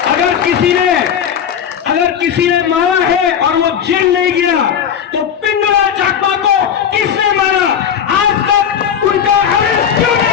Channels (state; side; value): quieter; right; 8.3 dB